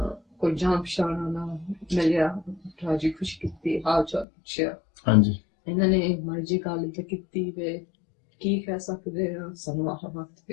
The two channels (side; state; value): right; drops out; at 4.2 s